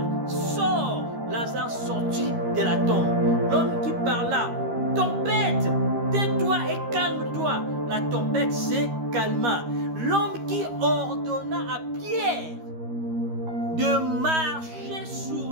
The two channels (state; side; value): late; left; 13 ms